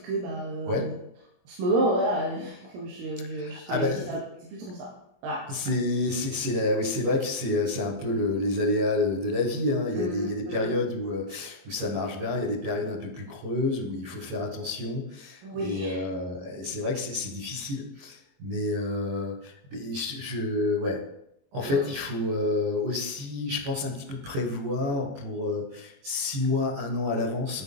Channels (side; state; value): left; late; 22 ms